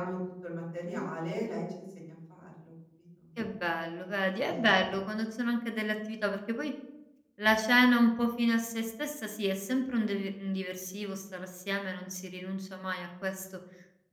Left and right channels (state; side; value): identical; both; correlation 1.00